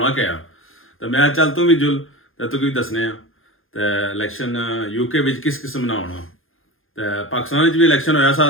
क्या। तो मैं चल तू भी जुल तो तू भी दसने आ तो इलैक्शन यूके में किस किस्म ना होना। तो पाकिस्तान भी इलैक्शन होया सा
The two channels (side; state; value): right; late; 0.60 ms